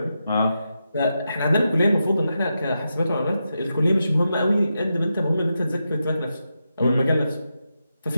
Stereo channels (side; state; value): both; inverted; correlation -0.87